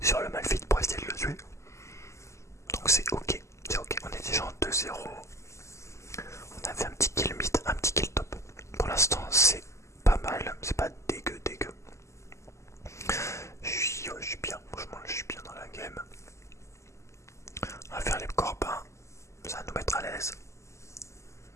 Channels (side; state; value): right; late; 0.14 ms